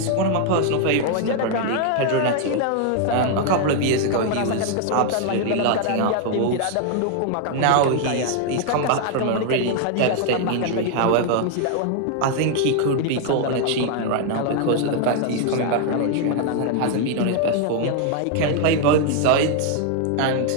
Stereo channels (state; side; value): different; both; correlation 0.00